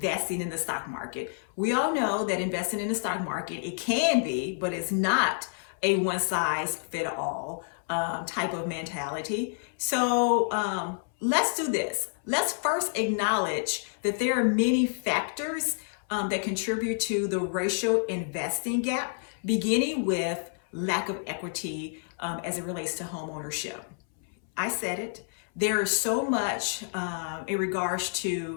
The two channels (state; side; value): silent; right; 59 dB below the other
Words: in the stock market? We all know that investing in the stock market, it can be, but it's not a one-size-fit-all type of mentality. So let's do this. Let's first acknowledge that there are many factors that contribute to the racial investing gap, beginning with lack of equity as it relates to home ownership. I said it. There is so much in regards